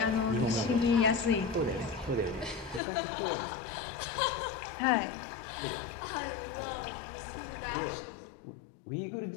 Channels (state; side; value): drops out; right; at 2.8 s